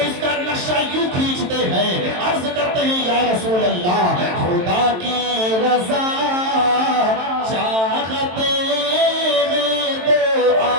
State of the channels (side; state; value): left; late; 23 ms